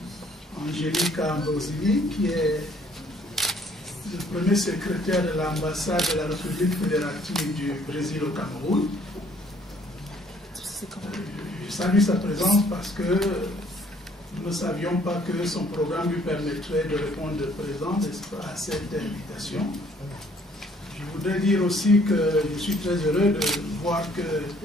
Angelica Ambrosini, qui est le premier secrétaire de l'ambassade de la République fédérative du Brésil au Cameroun. Je salue sa présence parce que nous ne savions pas que son programme lui permettrait de répondre présent à cette invitation. Je voudrais dire aussi que je suis très heureux de voir que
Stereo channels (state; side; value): normal; both; correlation 0.62